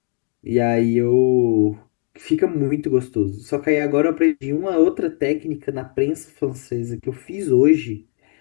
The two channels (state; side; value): quieter; right; 39.5 dB